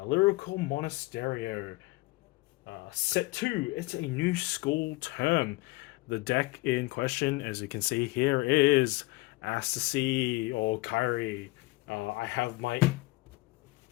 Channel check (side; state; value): right; quieter; 21.7 dB